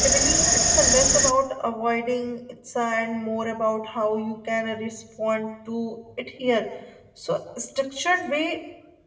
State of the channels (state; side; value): identical; both; correlation 1.00